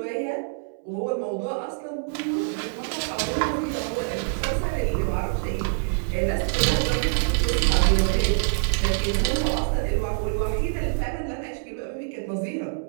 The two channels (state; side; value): silent; left; 62 dB below the other